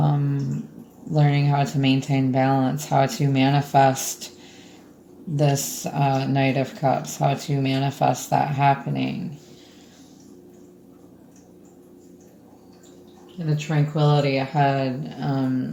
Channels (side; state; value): both; identical; correlation 1.00